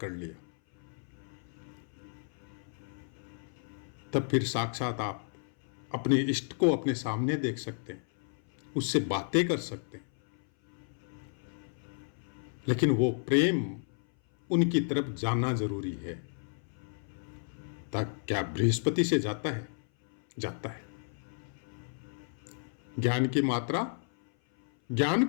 लिया, तब फिर साक्षात आप अपने इष्ट को अपने सामने देख सकते हैं, उससे बातें कर सकते हैं। लेकिन वो प्रेम उनकी तरफ जाना जरूरी है। क्या बृहस्पति से जाता है? जाता है। ज्ञान की मात्रा, ज्ञान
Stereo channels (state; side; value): silent; right; 56 dB below the other